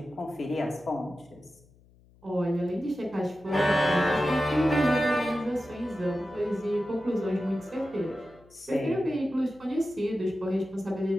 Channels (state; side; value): noise; left; hum, 28 dB below the sound